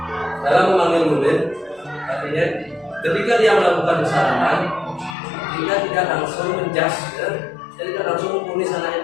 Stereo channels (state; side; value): drops out; right; at 5.2 s